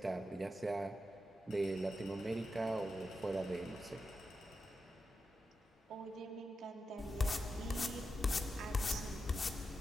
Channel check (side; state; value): both; normal; correlation 0.89